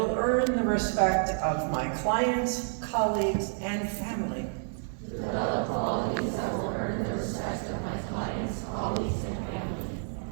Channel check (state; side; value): silent; left; 58 dB below the other